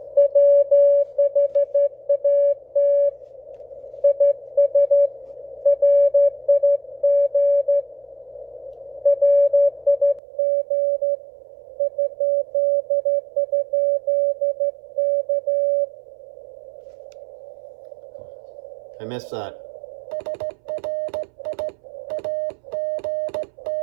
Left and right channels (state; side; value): drops out; left; at 10.2 s